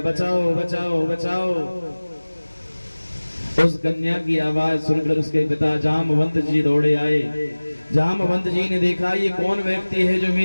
बचाओ बचाओ बचाओ। उस कन्या की आवाज सुनकर उसके पिता जामवंत जी दौड़े आए। जामवंत जी ने देखा ये कौन व्यक्ति है जो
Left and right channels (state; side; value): inverted; both; correlation -1.00